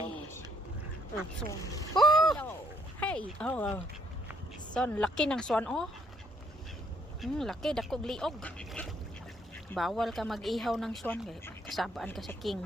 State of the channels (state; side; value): normal; both; correlation 0.67